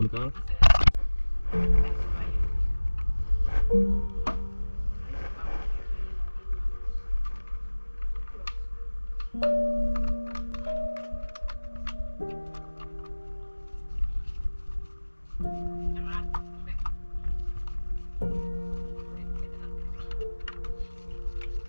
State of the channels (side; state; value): both; inverted; correlation -1.00